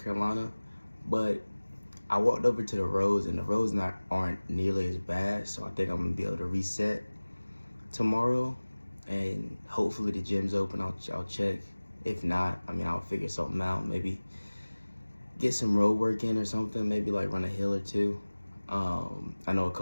Carolina. But I walked over to the roads, and the roads aren't nearly as bad, so I think I'm gonna be able to reset tomorrow. And hopefully the gym's open. I'll check. If not, I'll figure something out. Maybe get some road work in or something, maybe like run a hill or two. I know a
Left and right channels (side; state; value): both; inverted; correlation -1.00